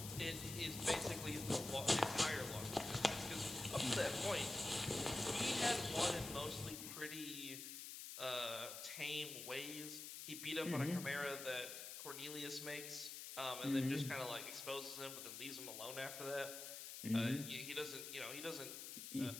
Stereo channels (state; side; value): noise; left; hiss, 8 dB below the sound